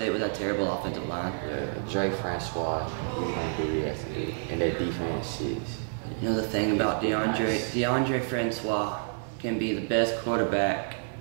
with that terrible offensive line. Yeah, Drake Francois, he's going to do what he has to do. And their defense is. You know the thing about DeAndre Francois can be the best quarterback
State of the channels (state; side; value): silent; left; 59 dB below the other